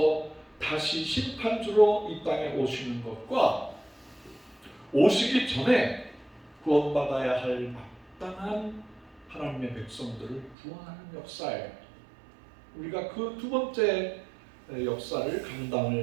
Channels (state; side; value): drops out; left; at 10.6 s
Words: 다시 심판주로 이 땅에 오시는 것과 오시기 전에 구원받아야 할 마땅한 하나님의 백성들을 구원하는 역사예요. 우리가 그 두 번째 역사를